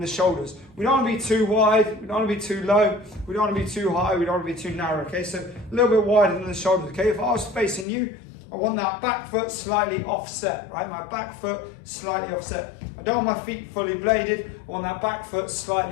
shoulders. We don't want to be too wide, we don't want to be too low, we don't want to be too high, we don't want to be too narrow. Okay, so a little bit wider than the shoulders. Okay, if I was facing you, I want that back foot slightly offset, right? My back foot slightly offset. I don't want my feet fully bladed. I want that back foot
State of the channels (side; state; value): right; drops out; at 7.9 s